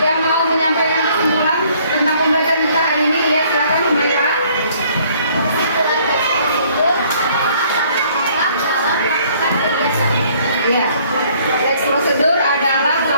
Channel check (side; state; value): both; inverted; correlation -0.61